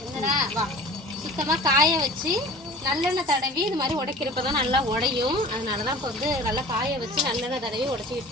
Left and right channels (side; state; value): both; normal; correlation 0.42